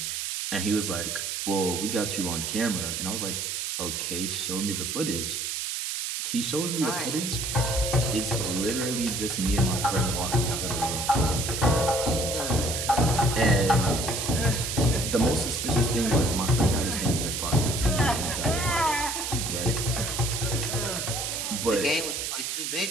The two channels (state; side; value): noise; right; hiss, 3 dB below the sound